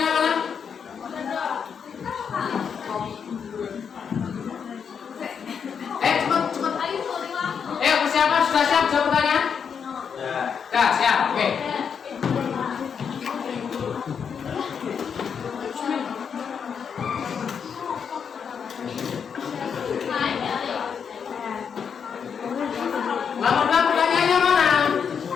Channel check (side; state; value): right; quieter; 6.9 dB